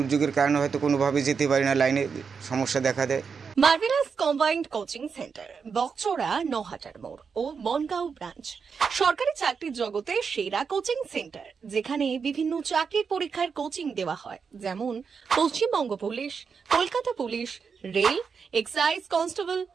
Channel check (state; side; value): quieter; left; 5.9 dB